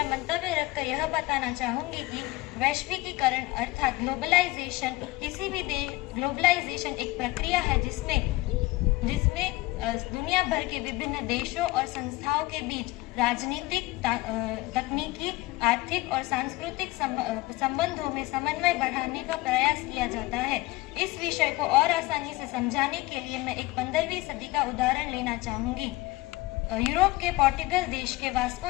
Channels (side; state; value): right; quieter; 20.4 dB